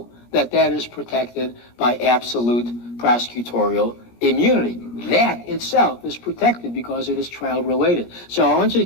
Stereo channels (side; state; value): right; late; 17 ms